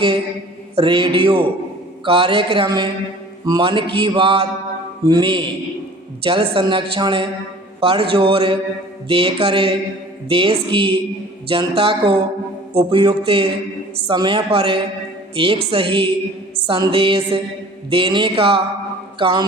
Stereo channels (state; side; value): normal; both; correlation 0.47